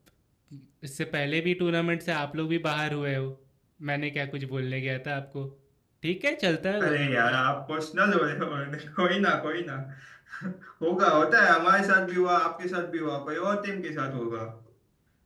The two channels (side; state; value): both; identical; correlation 1.00